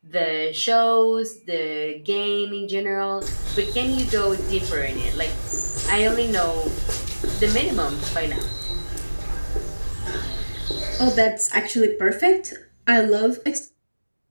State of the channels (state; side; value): inverted; both; correlation -1.00